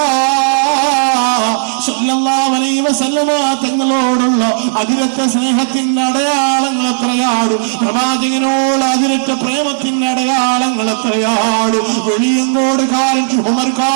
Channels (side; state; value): left; silent; digital silence